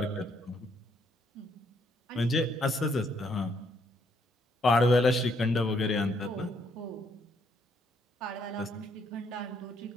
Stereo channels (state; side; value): normal; both; correlation 0.71